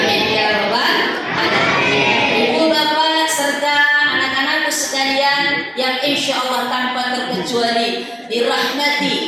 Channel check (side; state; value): both; identical; correlation 1.00